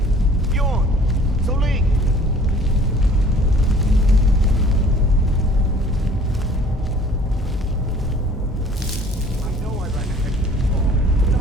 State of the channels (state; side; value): normal; both; correlation 0.52